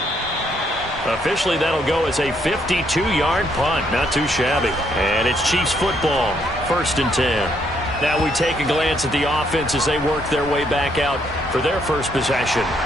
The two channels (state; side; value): normal; both; correlation 0.72